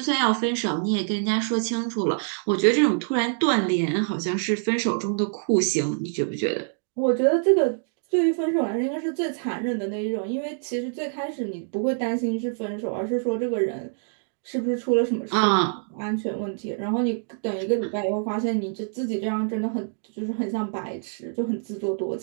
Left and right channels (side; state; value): left; silent; digital silence